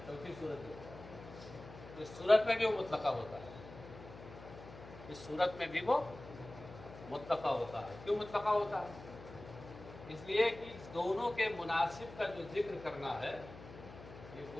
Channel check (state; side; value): noise; left; hum, 15 dB below the sound